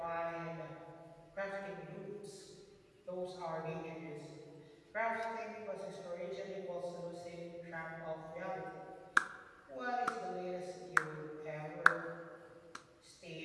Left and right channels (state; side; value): identical; both; correlation 1.00